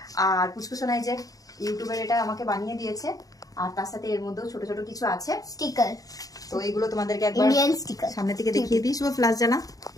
আর পুচকুসোনাই যে ইউটিউবের এটা আমাকে বানিয়ে দিয়েছে, আর তার সাথে এর মধ্যেও ছোট ছোট কিছু আছে, স্টিকার। তো এগুলো তোমাদেরকে একবার ইন্ডিয়ান স্টিকার সামনে থেকে দেখিয়ে দিই। শুভ ফ্লাশ জানা।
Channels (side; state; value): right; late; 0.17 ms